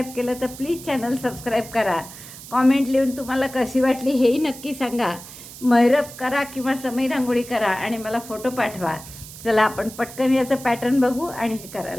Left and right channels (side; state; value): right; noise; hiss, 15 dB below the sound